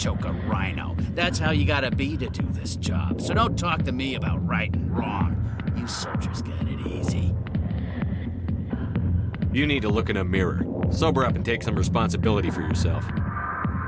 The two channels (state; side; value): identical; both; correlation 1.00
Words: a rhino. That's how you gotta be to do this job. So don't talk to me about right and wrong. You soldiers got it easy. You need to look in a mirror. Sober up and take some responsibility for yourself.